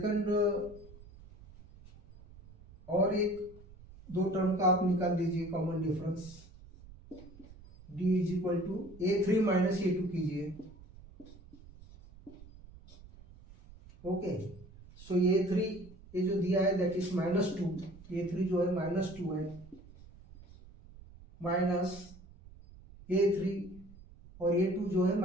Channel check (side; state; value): right; noise; rumble, 20 dB below the sound